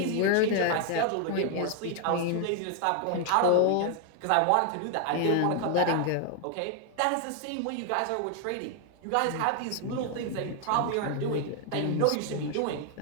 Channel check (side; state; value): both; different; correlation 0.00